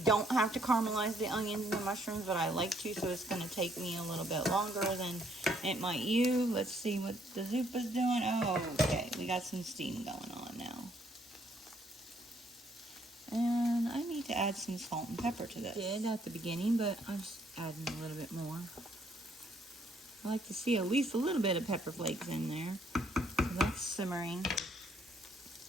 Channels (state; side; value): normal; both; correlation 0.68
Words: don't have to caramelize the onions and the mushrooms, but I like to, so it's going to take me a little bit longer than it might you. Let's see what the Zuppa's doing. Oh, okay. We got some steam going on now. And I need to add some salt and pepper to this. I did at the beginning, but I'm just adding a little bit more. I like to see at least a little bit of pepper flakes in there. So that's simmering.